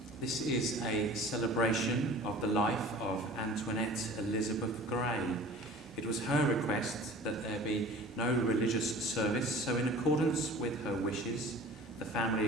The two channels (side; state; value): both; normal; correlation 0.43